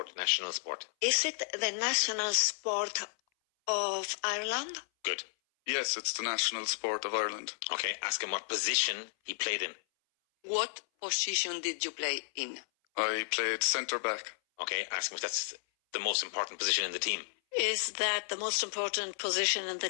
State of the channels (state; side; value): silent; right; 56 dB below the other